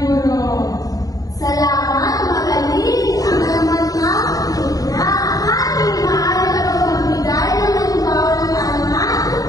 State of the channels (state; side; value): late; right; 0.17 ms